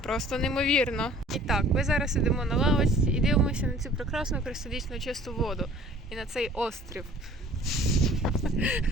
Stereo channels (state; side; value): normal; both; correlation 0.51